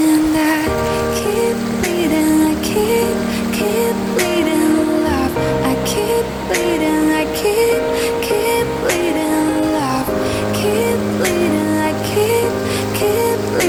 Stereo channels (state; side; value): identical; both; correlation 1.00